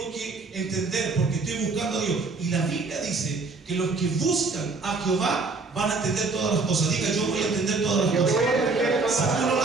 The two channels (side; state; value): left; quieter; 3.9 dB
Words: que entender porque estoy buscando a Dios. Y la Biblia dice que los que buscan a Jehová van a entender todas las cosas. Diga, yo voy a entender todas las cosas. Si tú no